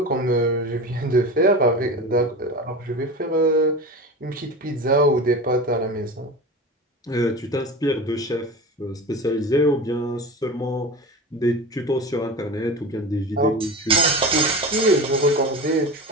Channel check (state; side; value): normal; both; correlation 0.29